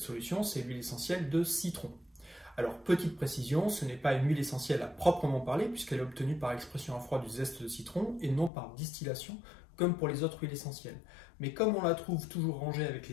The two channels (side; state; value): right; drops out; at 8.5 s